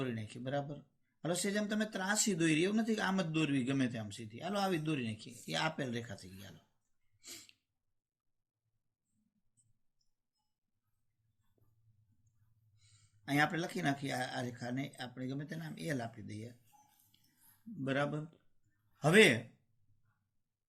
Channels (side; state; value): both; identical; correlation 1.00